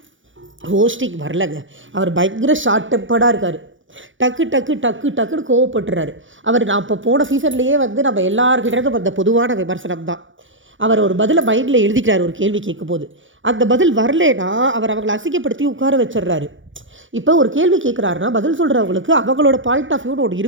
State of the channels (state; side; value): late; left; 0.56 ms